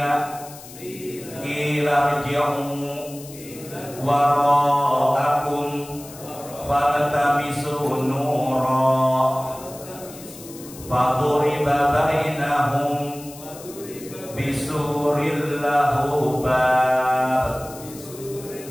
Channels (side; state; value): left; noise; hiss, 17 dB below the sound